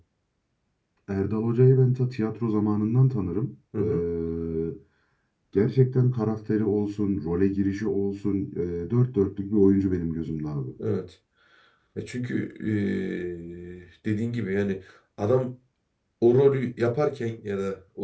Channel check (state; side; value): identical; both; correlation 1.00